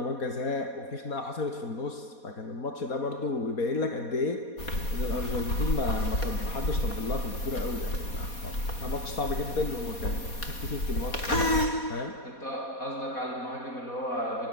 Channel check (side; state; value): right; late; 4.2 ms